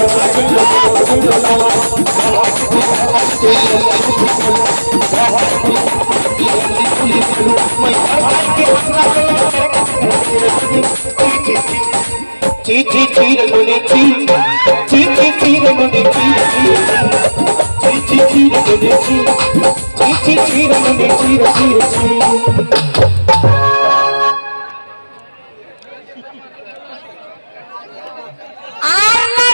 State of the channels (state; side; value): inverted; both; correlation -1.00